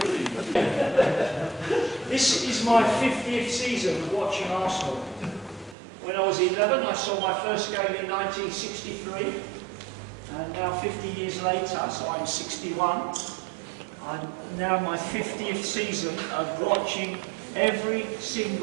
This is my 50th season of watching Arsenal. When I was 11, I saw my first game in 1963. And now 50 years later, so I'm 61. I'm now my 50th season of watching every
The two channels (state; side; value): drops out; left; at 5.8 s